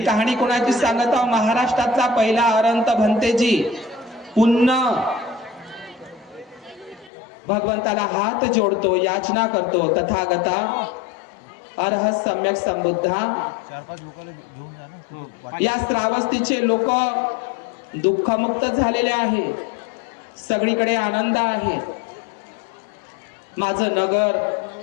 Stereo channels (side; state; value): right; drops out; at 7.1 s